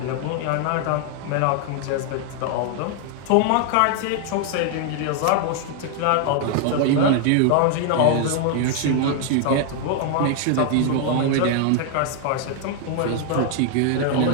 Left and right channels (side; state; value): both; different; correlation 0.00